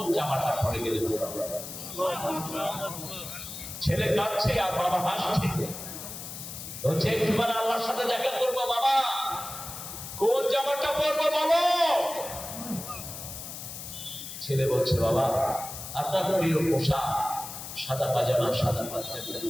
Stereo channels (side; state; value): left; noise; hiss, 9 dB below the sound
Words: জামাটা পরে গেলে ভালো হবে? ছেলে কাঁদছে আর বাবা হাসছে, বলছে একটুবার আল্লাহর সাথে দেখা করবো বাবা, কোন জামাটা পরবো বলো? ছেলে বলছে বাবা আপনার প্রিয় পোশাক সাদা পাজামা, সাদা পাঞ্জাবি,